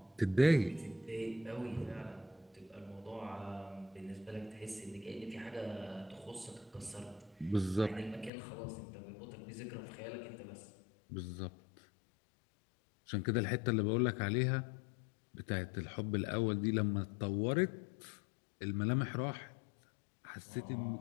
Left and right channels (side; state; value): right; drops out; at 8.3 s